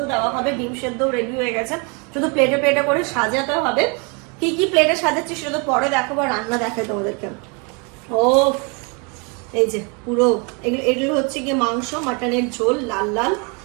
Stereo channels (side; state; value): left; quieter; 33.1 dB